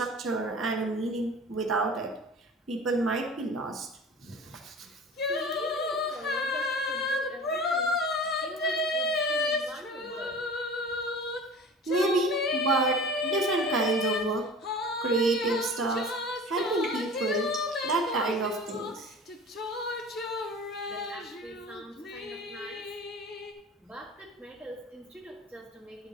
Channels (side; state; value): both; normal; correlation 0.39